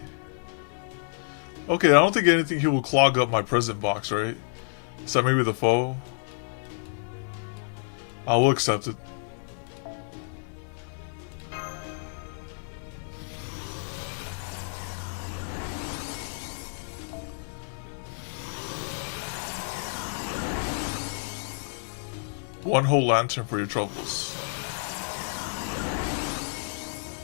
Okay, I don't think anything here will clog up my present box, right? Except maybe the foe. I will accept it. One whole lantern for your troubles.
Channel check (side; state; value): right; silent; digital silence